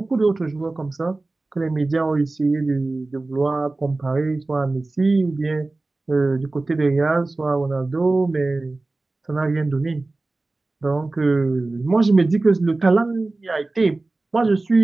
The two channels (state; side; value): quieter; left; 3.2 dB